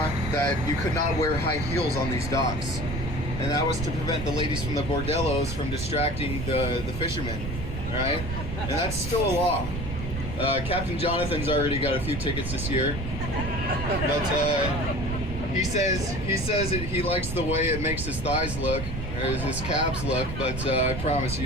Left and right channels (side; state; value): right; noise; rumble, 6 dB below the sound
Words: that you could not wear high heels on these docks. And that was to prevent the ladies from the bordellos from distracting the fishermen, right? And that's still a law. Captain Jonathan's already got a few tickets this year, but he says he likes the way it makes his thighs look, or his calves look. But I promise you